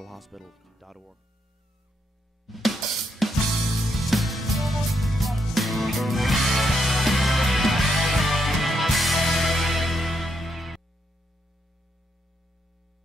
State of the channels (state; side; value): normal; both; correlation 0.79